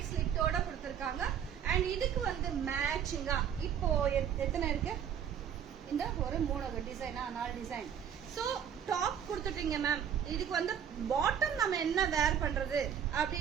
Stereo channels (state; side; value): quieter; left; 8.6 dB